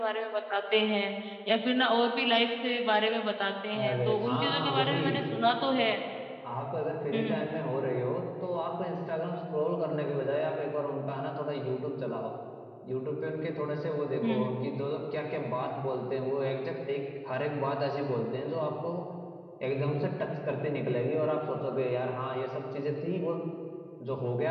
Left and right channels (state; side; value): identical; both; correlation 1.00